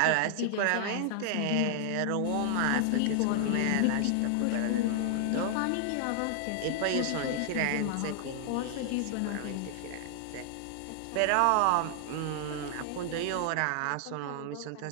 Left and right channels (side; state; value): both; different; correlation 0.00